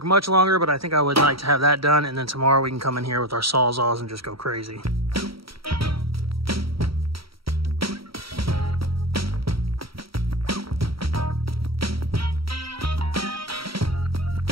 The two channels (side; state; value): left; late; 0.75 ms